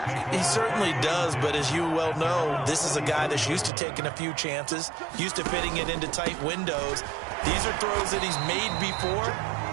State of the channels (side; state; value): left; drops out; at 3.7 s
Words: He certainly does, but as you well know, this is a guy that's used to taking a few chances, used to fitting it into tight windows. These are throws that he's made before.